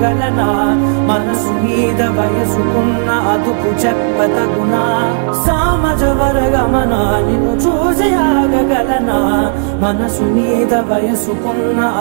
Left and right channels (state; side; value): silent; left; digital silence